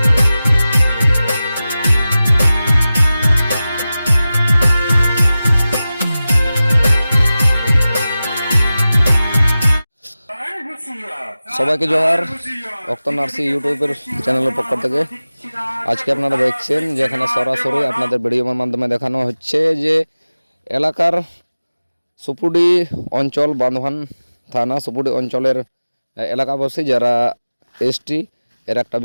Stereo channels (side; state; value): both; inverted; correlation -0.96